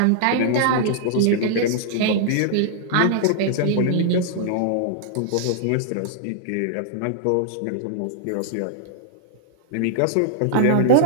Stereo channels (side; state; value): both; different; correlation -0.01